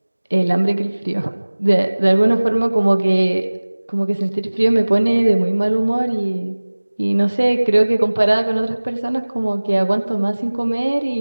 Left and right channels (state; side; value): inverted; both; correlation -1.00